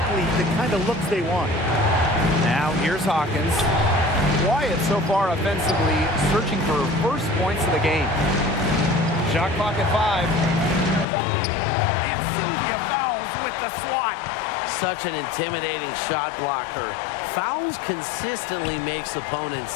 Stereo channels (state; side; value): drops out; right; at 11.1 s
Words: the kind of looks they want. Now here's Hawkins. Quiet so far offensively, searching for her first points of the game. Shot clock at 5. And Sylvia fouls with the swat. Such an intimidating shot blocker. Fouls consistently makes opponents